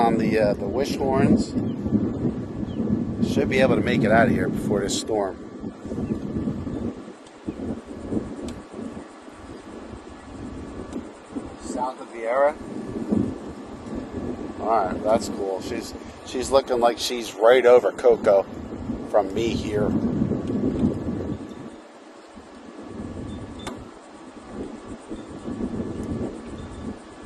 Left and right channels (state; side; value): identical; both; correlation 1.00